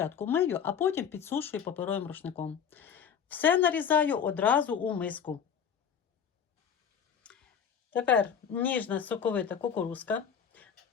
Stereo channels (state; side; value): quieter; right; 7.7 dB